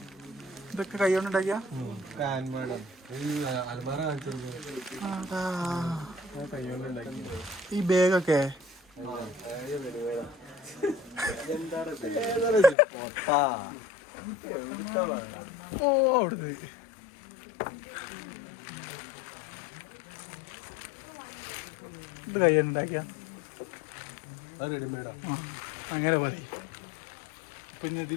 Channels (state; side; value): drops out; right; at 12.8 s